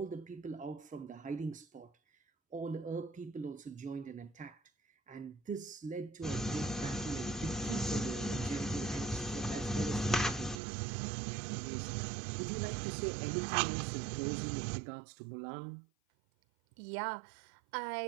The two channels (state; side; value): drops out; left; at 10.6 s